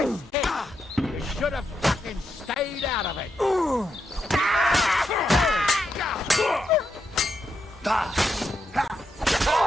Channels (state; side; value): normal; both; correlation 0.83